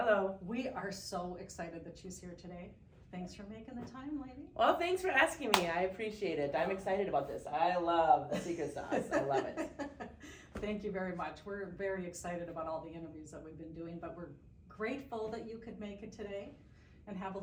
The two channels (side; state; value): both; identical; correlation 1.00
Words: We are so excited that she's here today. Thanks for making the time, lady. Well, thanks for asking me. I appreciate it. I'm excited about this. I love the secret sauce. I love it. Thank you very much. We're very excited about all the interviews that we've been doing, but we're grateful that you could make it today and have a